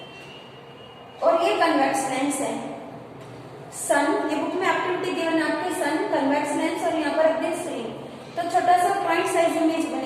और ये कन्वेक्स लेंस है, सन, ये बुक में एक्टिविटी गिवन आपके, सन, कन्वेक्स लेंस, और यहाँ पर एक स्क्रीन, तो छोटा सा पॉइंट साइज इमेज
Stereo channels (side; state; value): both; identical; correlation 1.00